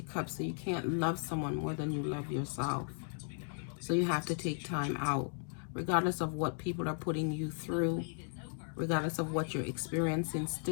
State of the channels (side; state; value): right; silent; 54 dB below the other